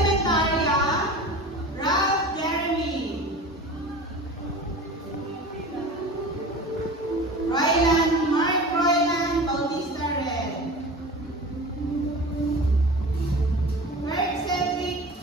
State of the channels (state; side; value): normal; both; correlation 0.36